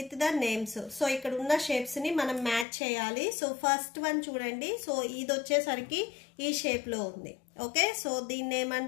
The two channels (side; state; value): right; drops out; at 2.7 s